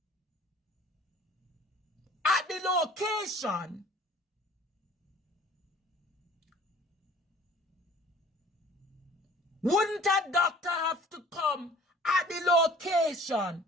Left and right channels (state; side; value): normal; both; correlation 0.50